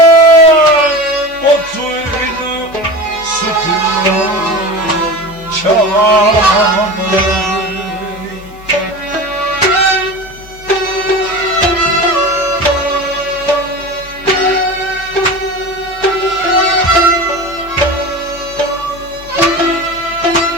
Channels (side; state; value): both; normal; correlation 0.30